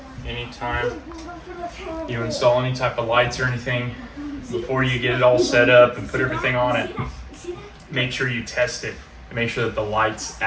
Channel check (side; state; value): both; identical; correlation 1.00